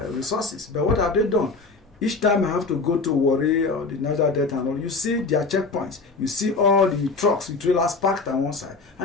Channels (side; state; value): right; quieter; 4.0 dB